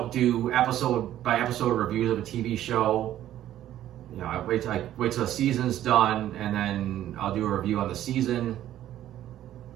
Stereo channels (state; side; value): quieter; left; 12.4 dB